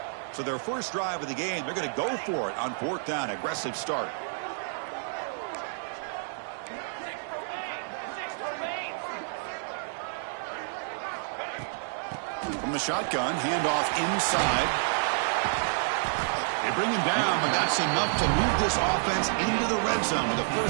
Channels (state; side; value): silent; left; digital silence